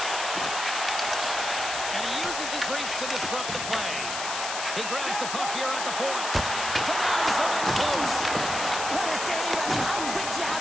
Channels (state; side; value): noise; left; hiss, 4 dB below the sound